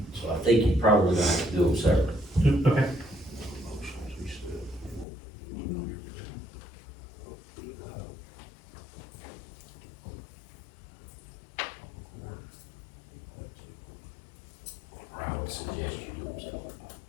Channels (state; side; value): drops out; right; at 5.1 s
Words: so I think you probably gonna have to do them separate. okay. I would suggest you do them separate.